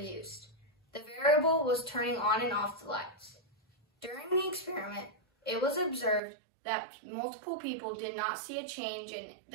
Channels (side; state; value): left; drops out; at 6.2 s